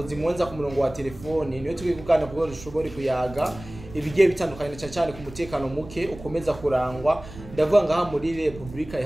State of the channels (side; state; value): right; noise; rumble, 16 dB below the sound